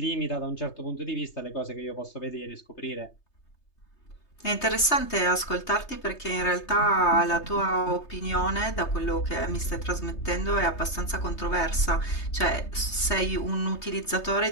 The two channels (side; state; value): right; late; 3.3 ms